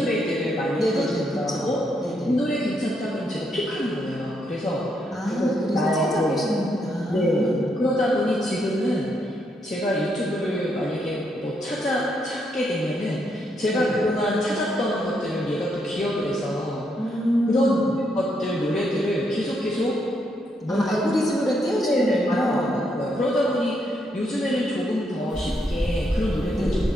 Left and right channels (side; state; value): both; normal; correlation 0.77